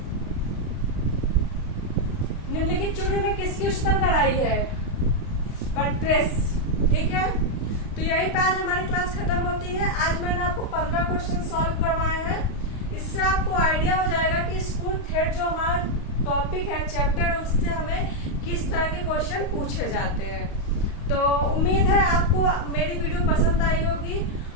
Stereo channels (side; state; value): right; late; 35 ms